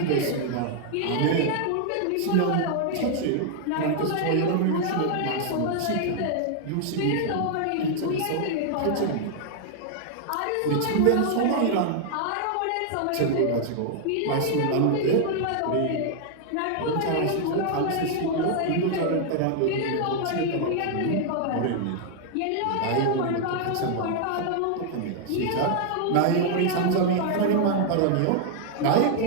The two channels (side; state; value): both; different; correlation 0.00